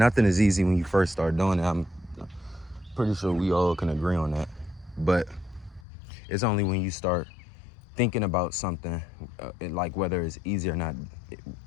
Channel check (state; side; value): drops out; right; at 5.9 s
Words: is easy when you first start doing it. I'm pretty sure we all can agree on that. But it's only when you start thinking about something, like whether it's easy or not,